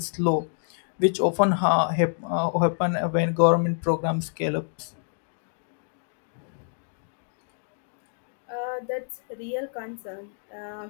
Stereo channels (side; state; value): right; silent; digital silence